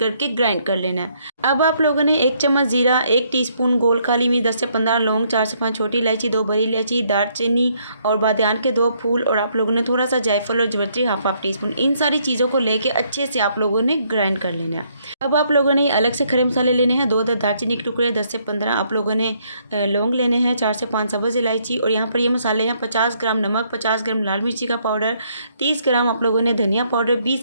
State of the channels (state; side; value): inverted; both; correlation -0.70